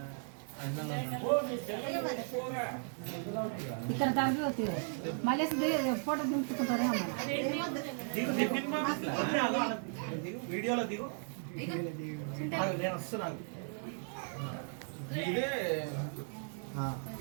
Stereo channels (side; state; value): left; silent; 54 dB below the other